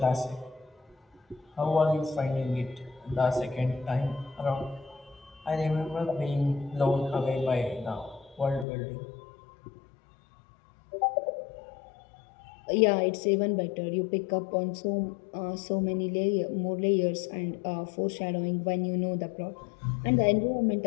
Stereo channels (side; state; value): right; drops out; at 8.7 s